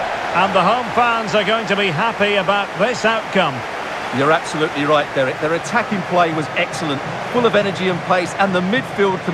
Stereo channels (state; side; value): identical; both; correlation 1.00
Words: And the home fans are going to be happy about this outcome. You're absolutely right, Derek. Their attacking play was excellent, full of energy and pace, and the midfield